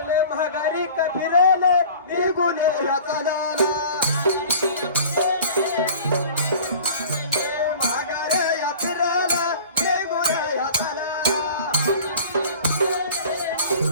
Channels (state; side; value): inverted; both; correlation -0.43